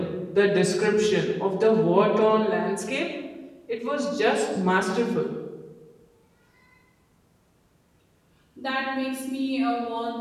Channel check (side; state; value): both; identical; correlation 1.00